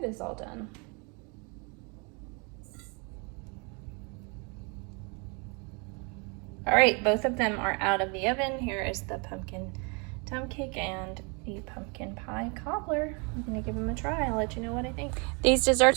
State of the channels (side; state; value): left; quieter; 32.6 dB